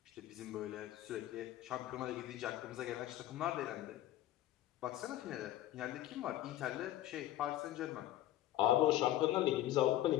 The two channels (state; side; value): quieter; right; 13.9 dB